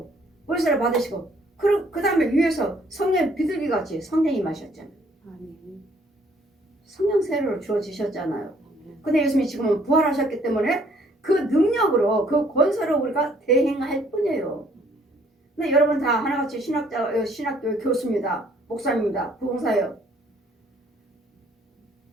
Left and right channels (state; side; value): normal; both; correlation 0.62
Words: 그 다음에 위에서 성령 비둘기같이 성령이 마셨잖아요. 성령 세례로 주어지셨잖아요. 근데 예수님이 지금은 부활하셨기 때문에 그 능력으로 그 권세로 우리가 대행할 뿐이에요. 근데 여러분 다 하나같이 신학교 교수입니다. 목사입니다. 부흥사예요.